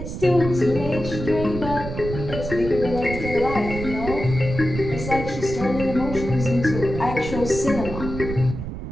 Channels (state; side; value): noise; right; rumble, 7 dB below the sound